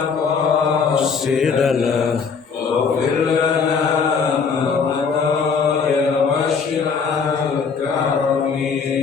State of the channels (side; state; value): right; quieter; 5.7 dB